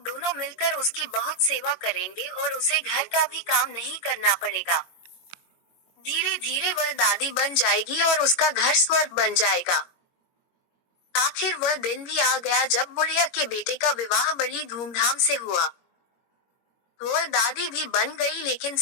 मिलकर उसकी बहुत सेवा करेंगे और उसे घर का भी काम नहीं करना पड़ेगा। धीरे धीरे वह दादी बन जाएगी और उसका घर स्वर्ग बन जाएगा। आखिर वह दिन भी आ गया जब बुढ़िया के बेटे का विवाह बड़ी धूमधाम से हुआ। वह दादी भी बन गई लेकिन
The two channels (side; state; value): right; late; 21 ms